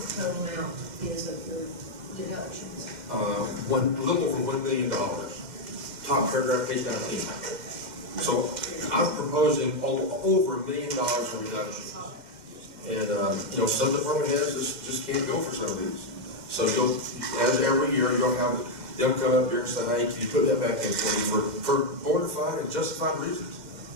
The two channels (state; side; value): late; left; 2.1 ms